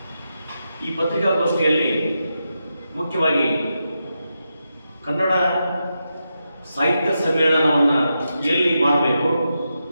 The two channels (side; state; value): both; inverted; correlation -0.87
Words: ಈ ಪತ್ರಿಕಾಗೋಷ್ಠಿಯಲ್ಲಿ ಮುಖ್ಯವಾಗಿ ಕನ್ನಡ ಸಾಹಿತ್ಯ ಸಮ್ಮೇಳನವನ್ನು ಎಲ್ಲಿ ಮಾಡಬೇಕು